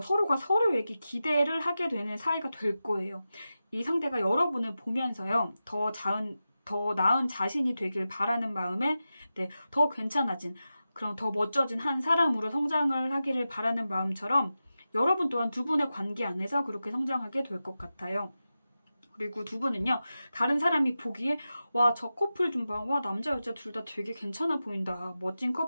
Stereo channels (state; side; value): inverted; both; correlation -0.93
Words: 서로가 서로에게 기대를 하게 되는 사이가 될 거예요. 이 상대가 여러분을 보면서요, 더 나은 자신이 되길 바라는 마음에 네, 더 괜찮아진 그런 더 멋져진 한 사람으로 성장을 하기를 바라는 마음처럼 여러분 또한 두 분의 관계 안에서 그렇게 성장하게 될 것 같아요. 그리고 두 분은요, 다른 사람이 보기에 와, 저 커플 좀 봐. 와, 남자 여자 둘 다 되게 괜찮아 보인다. 멋진